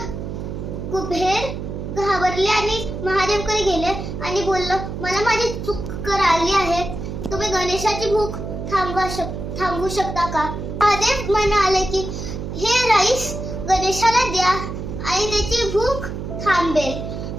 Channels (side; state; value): right; noise; hum, 6 dB below the sound